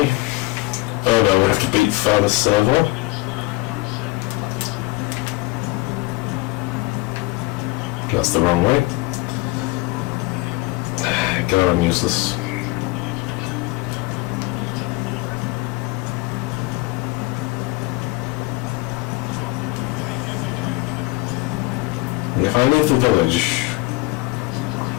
Oh no, we have to beat further server. That's the wrong way. God, I'm useless. And if I leave the village...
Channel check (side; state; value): right; quieter; 21.2 dB